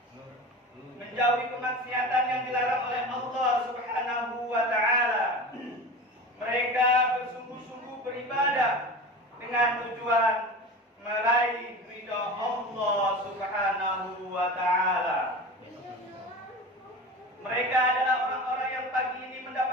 menjauhi kemaksiatan yang dilarang oleh Allah Subhanahu wa ta'ala. Mereka bersungguh-sungguh beribadah dengan tujuan meraih ridha Allah Subhanahu wa ta'ala. Mereka adalah orang-orang yang pagi ini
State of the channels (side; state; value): both; normal; correlation 0.32